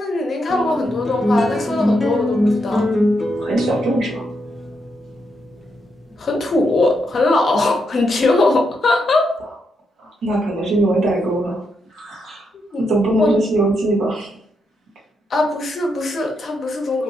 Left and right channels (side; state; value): both; normal; correlation 0.81